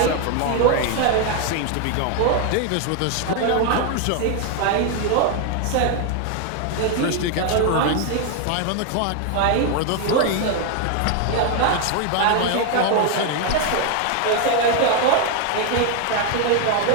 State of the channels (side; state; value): both; different; correlation 0.01